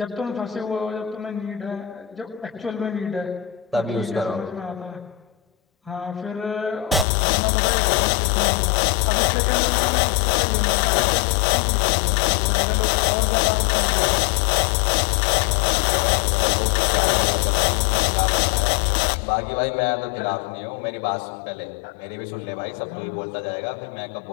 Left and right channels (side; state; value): right; drops out; at 7.1 s